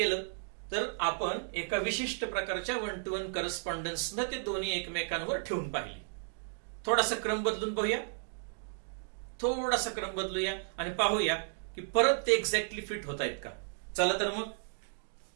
तर आपण एका विशिष्ट प्रकारच्या वन टू वन करस्पॉन्डन्सनं ते दोन्ही एकमेकांवर ठेवून पाहिले. थोडासा क्रम बदलून पाहूया, थोडासा क्रम बदलूया आणि पाहूया की परत ते एक्झॅक्टली फिट होत आहेत का. चला तर मग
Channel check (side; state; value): left; silent; digital silence